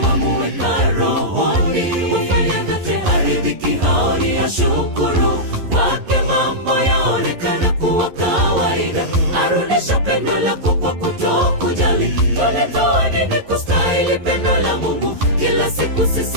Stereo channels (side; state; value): left; late; 11 ms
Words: wamuweka rohoni, hufanya vyote haridhiki, haoni ashukuru. Kwake mambo yaonekana kuwa kawaida, arudisha pendo lako kwa kutokujali. Tulitoa nini kustahili pendo la Mungu? Kila siku